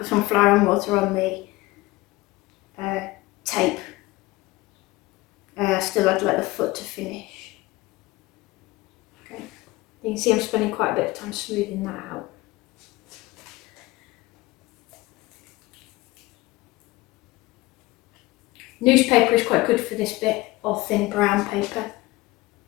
some flour and water on the tape. Still had like the foot to finish. Okay, you can see I'm spending quite a bit of time smoothing that out. Newspaper is quite good for this bit, or thin brown paper.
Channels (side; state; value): right; quieter; 20.0 dB